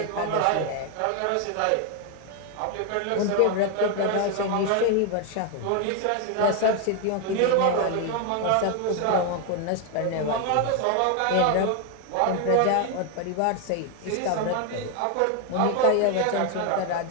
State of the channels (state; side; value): different; both; correlation 0.01